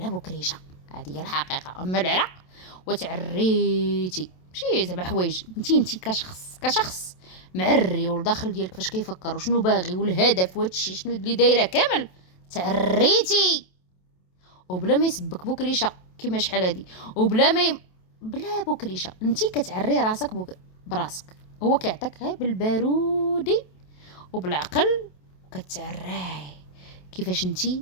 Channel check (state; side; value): late; right; 27 ms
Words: بكريشه. هذه هي الحقيقه. اما العرق وتعريتي ماشي زعما حوايج، انت كشخص معري، والداخل ديالك فاش كيفكر وشنو باغي والهدف وهادشي شنو اللي دايره كامل، تعريتي وبلا ما يسبك بكريشه كيما شحال هادي، وبلا بلا بكريشه انت كتعري راسك براسك. هو كيعطيك غير بالبارودي وبالعقل وكتعراي كيفاش انت